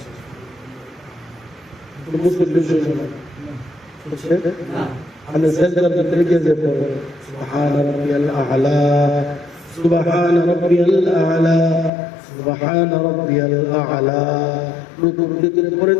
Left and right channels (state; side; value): drops out; right; at 11.9 s